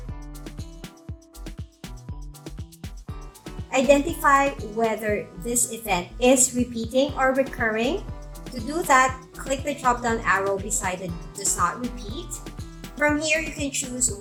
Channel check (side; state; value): both; identical; correlation 1.00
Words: Identify whether this event is repeating or recurring. To do that, click the drop-down arrow beside the Does Not Repeat. From here, you can choose